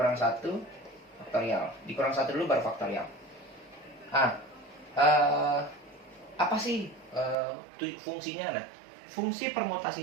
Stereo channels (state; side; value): drops out; left; at 7.4 s